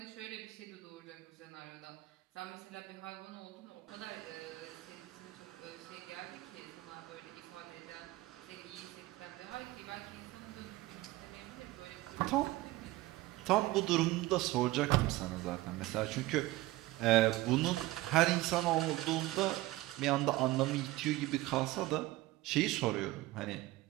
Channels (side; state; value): left; quieter; 18.4 dB